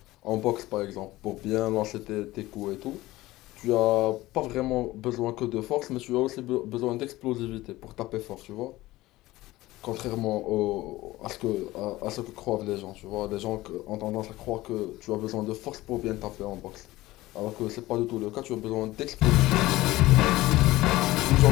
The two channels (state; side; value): quieter; right; 17.9 dB